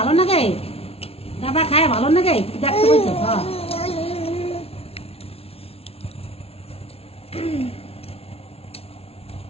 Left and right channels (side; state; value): right; late; 0.29 ms